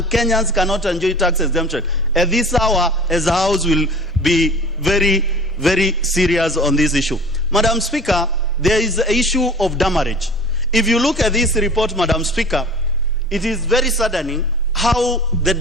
Kenyans cannot enjoy tax exemption. At this hour, as a house, will be very, very serious on this issue. Madam Speaker, there is the issue of damage. If you look at this report, Madam Speaker, it is very saddening how the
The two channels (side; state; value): both; normal; correlation 0.42